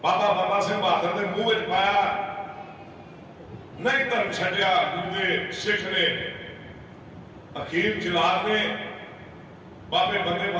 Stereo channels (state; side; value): identical; both; correlation 1.00